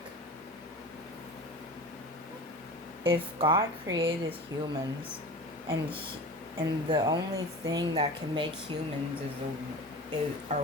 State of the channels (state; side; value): normal; both; correlation 0.34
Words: If God created humans and and the only thing that can make humans